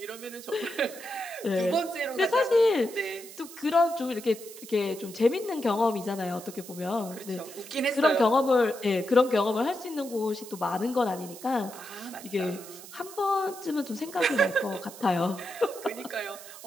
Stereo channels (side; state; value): right; noise; hiss, 16 dB below the sound